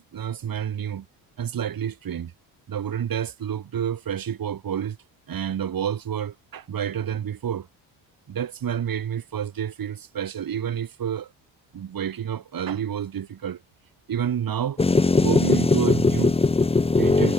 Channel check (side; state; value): both; normal; correlation 0.49